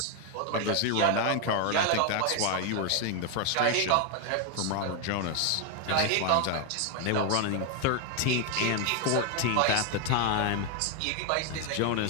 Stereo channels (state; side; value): different; both; correlation 0.01